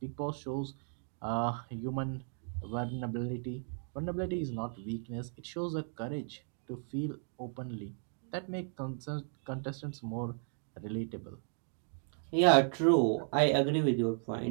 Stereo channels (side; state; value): left; silent; 54 dB below the other